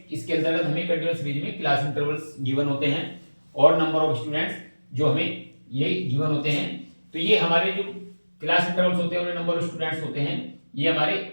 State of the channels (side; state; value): both; inverted; correlation -1.00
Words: इसके अंतर्गत हमें कंटिन्यूअस सीरीज में क्लास इंटरवल्स गिवन होते हैं और नंबर ऑफ स्टूडेंट्स जो हमें ये गिवन होते हैं। तो ये हमारे जो क्लास इंटरवल्स होते हैं और नंबर ऑफ स्टूडेंट्स होते हैं, ये हमारे